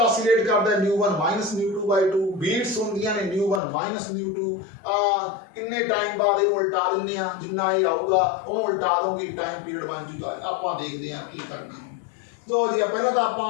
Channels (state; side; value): drops out; right; at 3.6 s